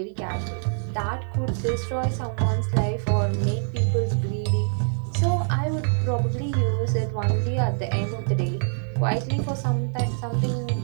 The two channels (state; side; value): silent; left; digital silence